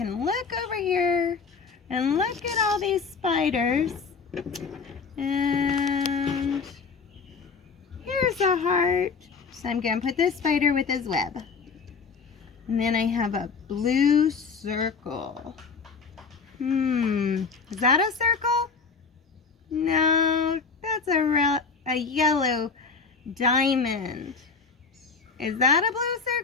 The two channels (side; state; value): right; quieter; 5.1 dB